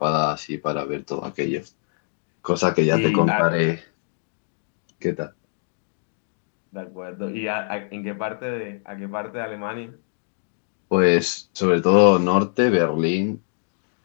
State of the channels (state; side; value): silent; right; digital silence